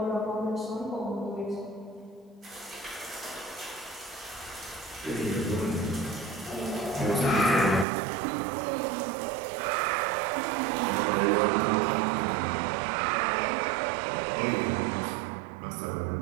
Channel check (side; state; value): left; drops out; at 7.9 s